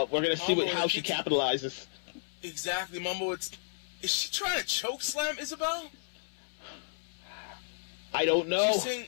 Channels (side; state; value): right; silent; 56 dB below the other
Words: we're going to see Mamba how she capitalizes. Exactly, Mamba. Is she trying to choke slam Isabel? I don't know.